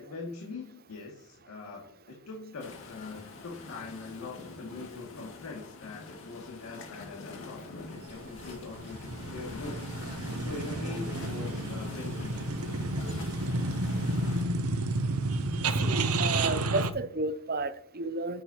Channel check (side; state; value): both; normal; correlation 0.42